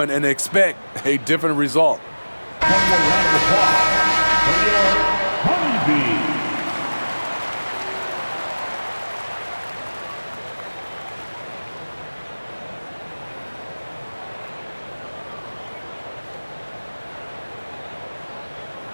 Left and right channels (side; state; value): both; inverted; correlation -1.00